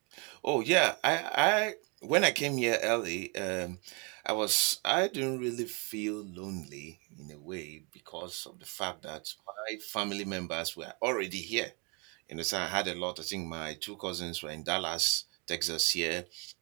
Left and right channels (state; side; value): quieter; left; 32.9 dB